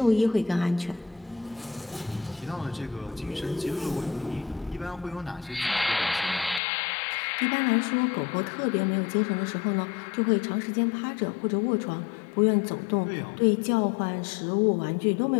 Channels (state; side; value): drops out; right; at 6.6 s